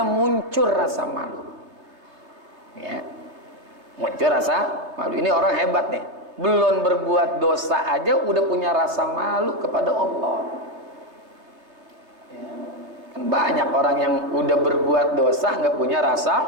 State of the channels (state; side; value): late; left; 3.3 ms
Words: muncul rasa malu. Ya, muncul rasa malu. Ini orang hebat nih, belum berbuat dosa aja udah punya rasa malu kepada Allah. Ya. Kan banyak orang yang udah berbuat dosa nggak punya rasa